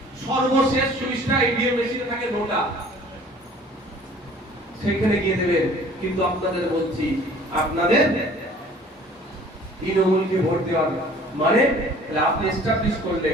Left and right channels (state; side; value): normal; both; correlation 0.51